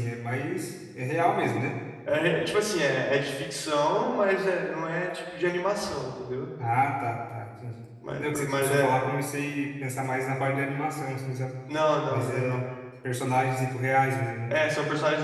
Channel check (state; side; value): identical; both; correlation 1.00